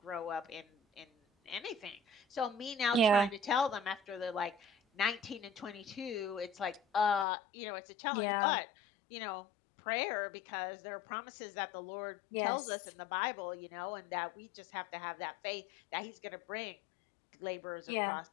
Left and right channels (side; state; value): right; drops out; at 7.2 s